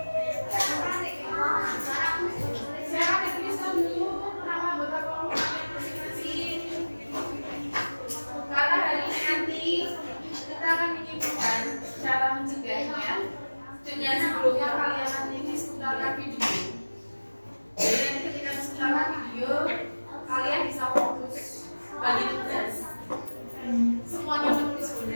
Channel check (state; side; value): inverted; both; correlation -1.00